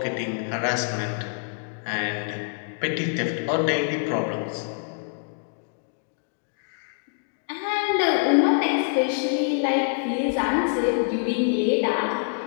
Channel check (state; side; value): silent; right; digital silence